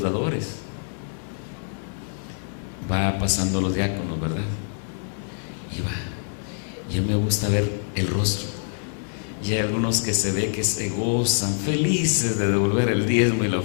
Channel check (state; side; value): silent; right; digital silence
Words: dadores. Va pasando los diáconos, ¿verdad? Y va. Y a mí me gusta ver el rostro. Y hay algunos que se ve que se gozan, felices de devolver el diezmo y la